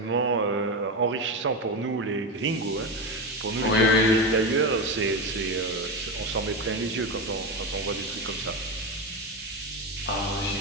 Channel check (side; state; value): both; normal; correlation 0.16